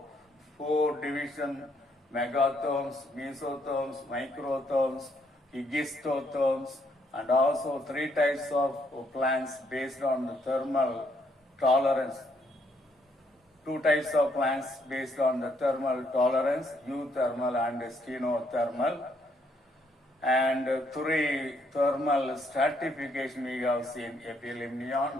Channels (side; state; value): both; normal; correlation 0.71